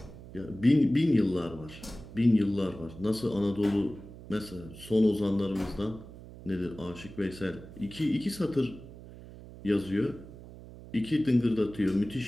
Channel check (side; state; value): right; noise; hum, 16 dB below the sound